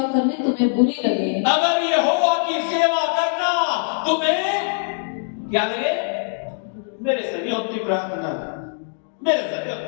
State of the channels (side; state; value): right; silent; 64 dB below the other